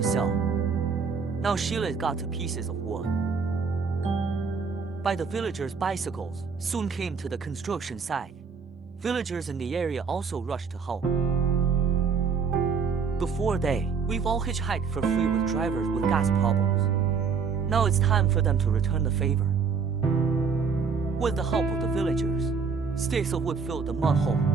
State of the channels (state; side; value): quieter; left; 5.5 dB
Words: sell. Now Sheila's got to pieces of wood. By the villagers' bicycles soon came to the construction site. Villagers in the area also rushed to help. Before we've all hitchhiked for free with drivers with gas problems. Now it's time for them to return the favor. With the help of the villagers, sticks of wood filled the mud hole.